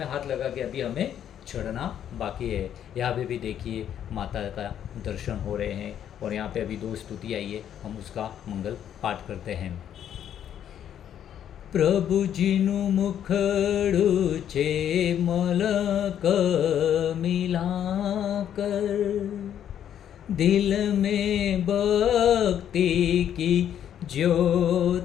हाथ लगा के अभी हमें चढ़ना बाकी है। यहाँ पे भी देखिए माता का दर्शन हो रहे हैं और यहाँ पे अभी 2 स्तुति आई है, हम उसका मंगल पाठ करते हैं। प्रभुजीनु मुखड़ू छे मलक मिलाकर, दिल में भक्ति की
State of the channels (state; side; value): quieter; right; 9.9 dB